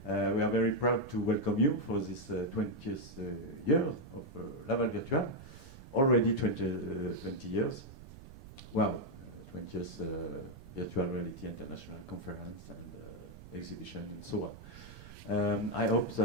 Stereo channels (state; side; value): noise; right; rumble, 16 dB below the sound